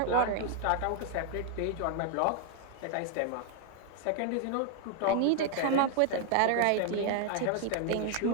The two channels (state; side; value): different; both; correlation 0.00